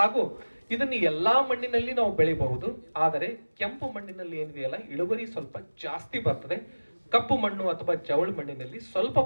ಇದನ್ನು ಎಲ್ಲಾ ಮಣ್ಣಿನಲ್ಲಿ ನಾವು ಬೆಳಿಬಹುದು. ಆದರೆ ಕೆಂಪು ಮಣ್ಣಿನಲ್ಲಿ ಏನಿದೆಯಲ್ಲ ಇಳುವರಿ ಸ್ವಲ್ಪ ಜಾಸ್ತಿ ಬರ್ತದೆ. ಕಪ್ಪು ಮಣ್ಣು ಅಥವಾ ಜವಳು ಮಣ್ಣಿನಲ್ಲಿ ಸ್ವಲ್ಪ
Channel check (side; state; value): both; inverted; correlation -1.00